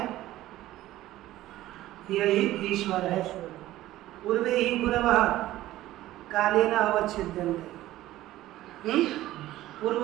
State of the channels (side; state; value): left; quieter; 15.3 dB